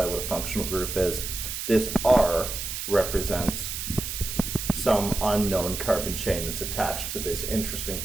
what a functional group is, this R represents some unknown carbon chain that's attached to this interesting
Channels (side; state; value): right; noise; hiss, 5 dB below the sound